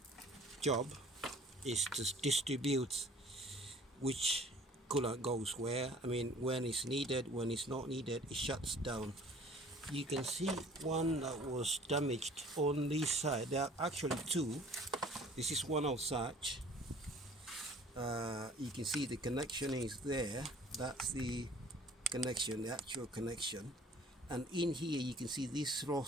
job is to distribute which coolant goes where. I mean, when it's needed, when it's not needed, it shuts down. You can see one that was damaged on this side. There are actually two. This is one of such. You can see the connection is there. That's the connection, the actual connection. And in here you can see this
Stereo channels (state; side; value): normal; both; correlation 0.51